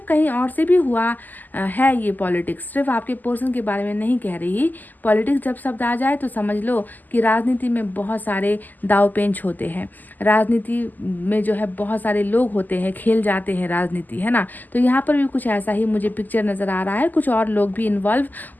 कहीं और से भी हुआ है ये पॉलिटिक्स, सिर्फ आपके पर्सन के बारे में नहीं कह रही। पॉलिटिक्स जब शब्द आ जाए तो समझ लो कि राजनीति में बहुत सारे दाव पेंच होते हैं, राजनीति में जो है बहुत सारे लोग होते हैं, खेल जाते हैं राजनीति, है ना। तो यहाँ पर भी कुछ ऐसा ही मुझे पिक्चर नज़र आ रहा है, कुछ और लोग भी इन्वॉल्व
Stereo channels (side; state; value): right; late; 0.085 ms